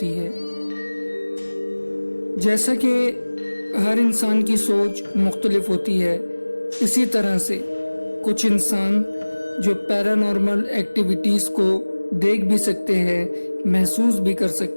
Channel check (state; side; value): inverted; both; correlation -1.00